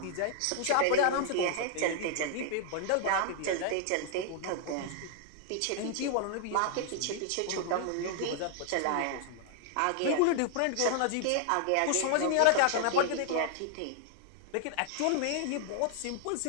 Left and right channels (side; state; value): both; different; correlation 0.00